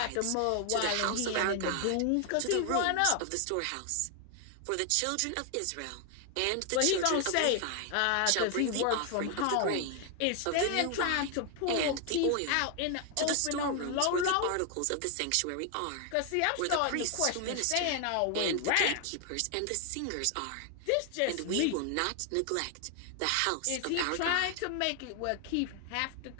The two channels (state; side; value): different; both; correlation 0.00